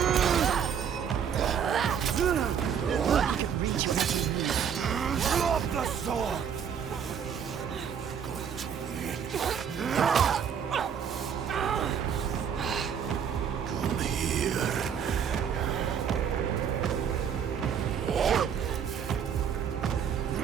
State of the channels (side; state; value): left; quieter; 7.8 dB